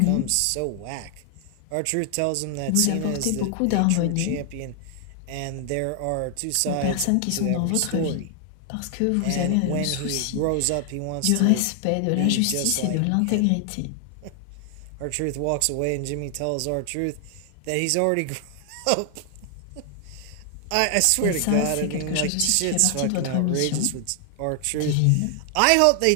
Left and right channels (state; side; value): different; both; correlation 0.00